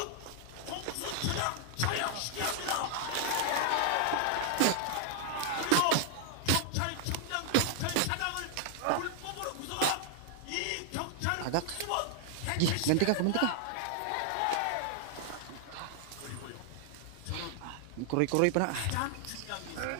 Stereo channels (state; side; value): different; both; correlation 0.00